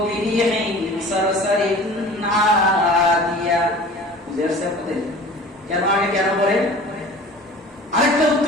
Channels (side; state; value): both; normal; correlation 0.42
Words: বিরিহিন সারসারিন আদিয়া। বুঝাচ্ছে আপনাদের কেন আগে কেন পরে? আরেকটা